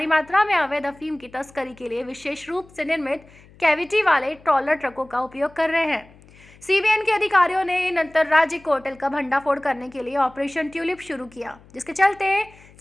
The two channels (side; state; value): left; noise; hum, 25 dB below the sound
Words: मात्रा में अवैध अफीम की तस्करी के लिए विशेष रूप से निर्मित कैविटी वाले ट्रॉलर ट्रकों का उपयोग कर रहे हैं। सीबीएन के अधिकारियों ने इन अंतर्राज्यीय कार्टेल का भंडाफोड़ करने के लिए ऑपरेशन ट्यूलिप शुरू किया, जिसके चलते